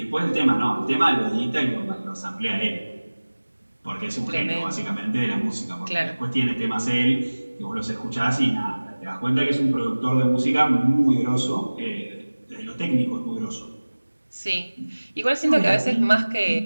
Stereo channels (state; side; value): inverted; both; correlation -1.00